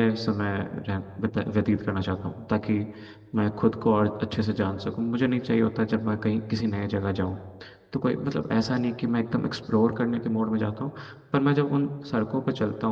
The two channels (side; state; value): both; identical; correlation 1.00